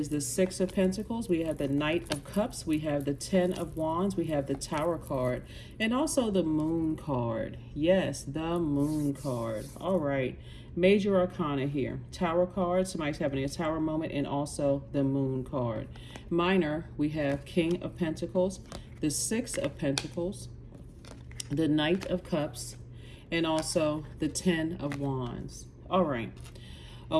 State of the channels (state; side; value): identical; both; correlation 1.00